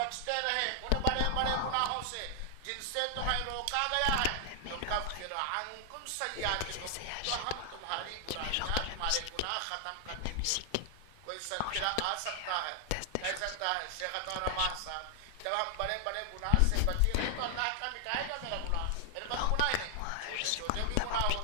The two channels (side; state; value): both; different; correlation 0.00